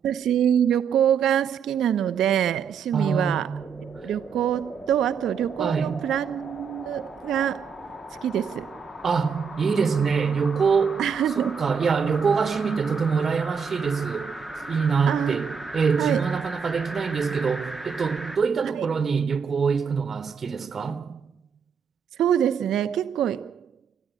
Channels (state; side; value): quieter; left; 6.6 dB